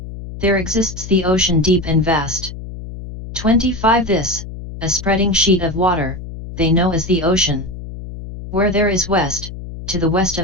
There exists the ocean deep and vast. 25 This, a spreading sheet of water, they know as the ocean. Where there is west, to the west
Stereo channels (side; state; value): left; noise; hum, 11 dB below the sound